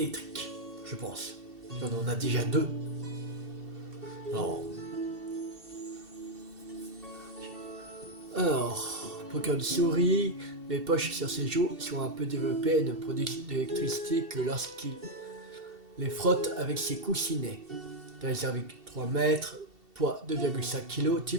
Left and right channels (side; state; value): left; late; 2.7 ms